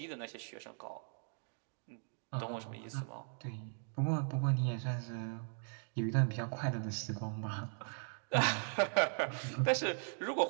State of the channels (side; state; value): left; silent; 52 dB below the other